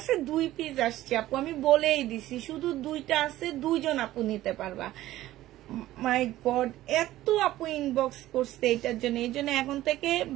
2 পিস আসছে আপু, আমি বলেই দিছি শুধু 2টা আছে, 2 জন আপু নিতে পারবা। মাই গড, এত আপু ইনবক্স করছে এটার জন্য। এই জন্য এখন থেকে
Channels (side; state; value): left; quieter; 15.1 dB